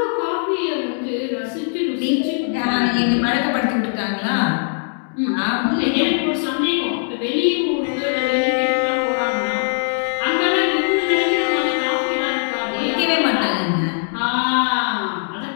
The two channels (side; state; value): right; silent; digital silence